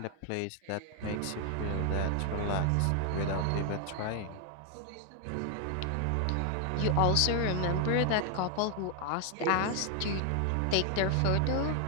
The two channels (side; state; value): both; different; correlation 0.01